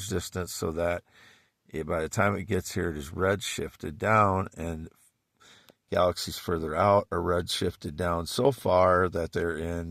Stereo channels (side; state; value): both; identical; correlation 1.00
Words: distance so that by the time it gets here, it is redshifted down, and galaxies further out are redshifted down so far that they're